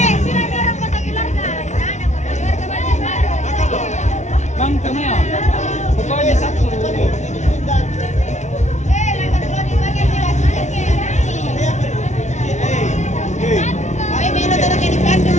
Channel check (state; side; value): late; right; 0.34 ms